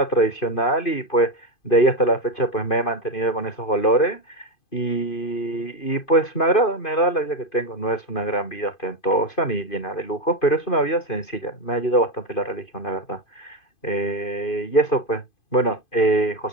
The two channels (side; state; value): right; late; 2.5 ms